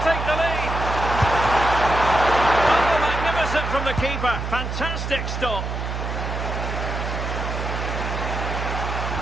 take the lead. Oh, magnificent from the keeper. Fantastic stop.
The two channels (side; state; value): right; noise; hum, 4 dB below the sound